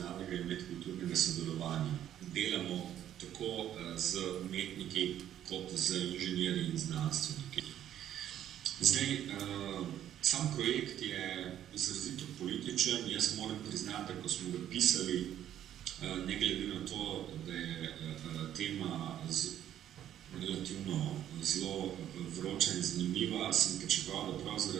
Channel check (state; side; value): quieter; left; 11.1 dB